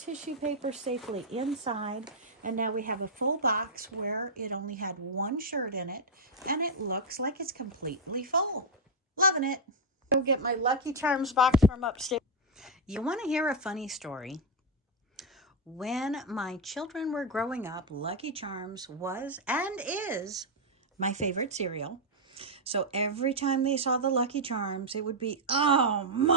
paper safely inside. And now we have a full box where it only had one shirt in it and it looks like it's completely full. Loving it. Go get my Lucky Charms box from upstairs. You want to hear a funny story? When my children were growing up, Lucky Charms was and is my favorite cereal. So every time they saw the Lucky Charms, it would be, "Oh,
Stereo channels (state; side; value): normal; both; correlation -0.02